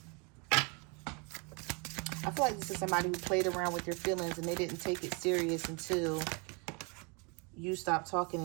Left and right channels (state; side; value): quieter; left; 32.4 dB